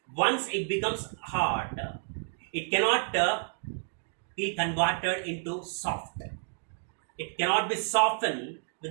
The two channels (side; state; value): left; silent; 58 dB below the other